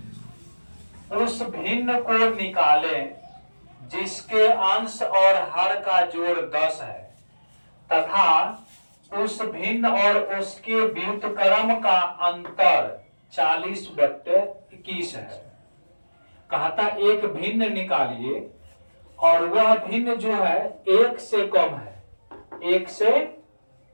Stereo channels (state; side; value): inverted; both; correlation -1.00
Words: उस भिन्न को निकालें जिसके अंश और हर का जोड़ 10 है तथा उस भिन्न और उसके व्युत्क्रम का अंतर 40/21 है। कहता एक भिन्न निकालिए और वह भिन्न जो है एक से कम है, एक से